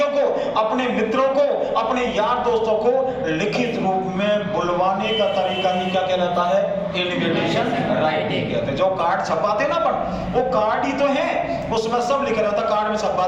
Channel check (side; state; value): both; identical; correlation 1.00